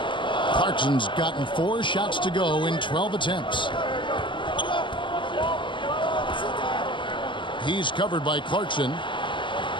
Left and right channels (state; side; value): late; right; 0.24 ms